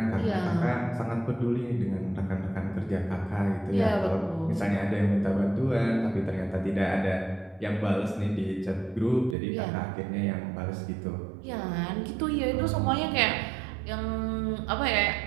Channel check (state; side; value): drops out; left; at 9.3 s